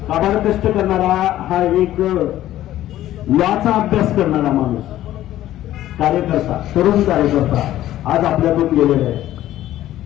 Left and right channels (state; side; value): quieter; right; 13.6 dB